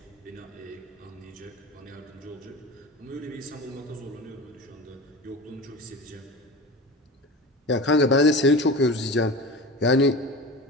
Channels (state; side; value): normal; both; correlation 0.32